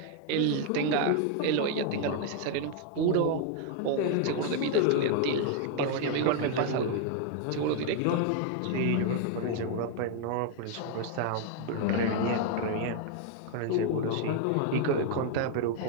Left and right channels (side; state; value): both; different; correlation 0.00